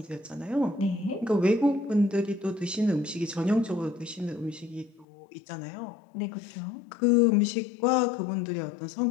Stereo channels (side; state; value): right; drops out; at 5.1 s